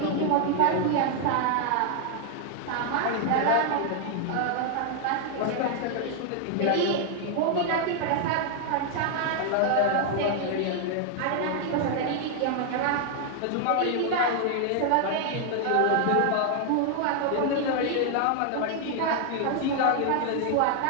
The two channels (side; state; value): both; different; correlation 0.00